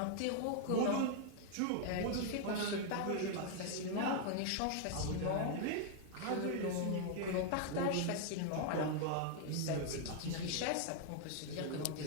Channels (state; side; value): different; both; correlation 0.00